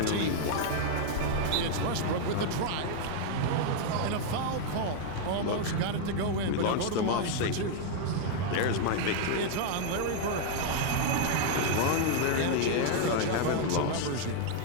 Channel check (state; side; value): different; both; correlation 0.00